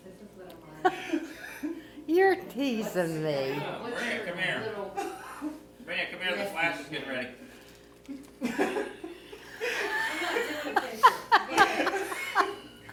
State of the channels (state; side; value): identical; both; correlation 1.00